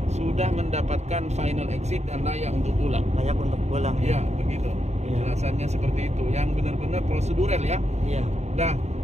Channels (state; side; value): late; left; 0.32 ms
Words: sudah mendapatkan final exit dan layak untuk pulang. Layak untuk pulang Ya, ya. begitu. Iya. Penjelasannya seperti itu. Yang benar-benar prosedural ya. Iya. Nah,